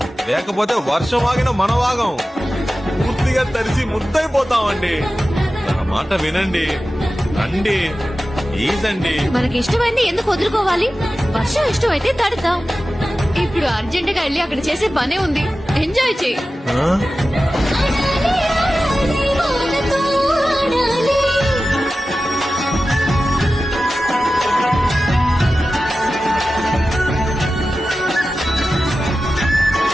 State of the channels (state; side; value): normal; both; correlation 0.94